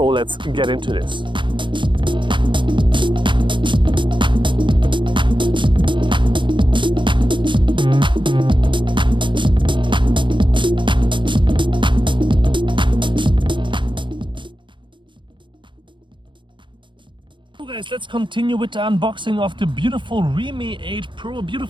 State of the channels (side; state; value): left; late; 0.23 ms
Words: let's get into this. Guys, let's continue with the unboxing of the beautiful Reame 8 Pro, a